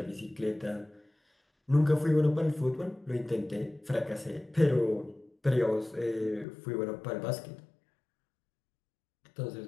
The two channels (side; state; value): right; drops out; at 6.5 s